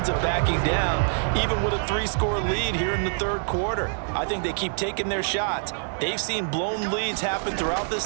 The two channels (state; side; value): silent; left; digital silence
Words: of backing down, even with a 3-score lead here in the 3rd quarter. I think they keep taking their shots. They've seen blown leads happen throughout this